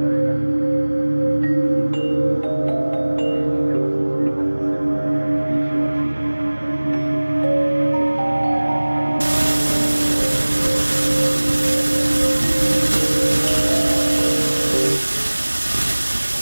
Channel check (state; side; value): inverted; both; correlation -1.00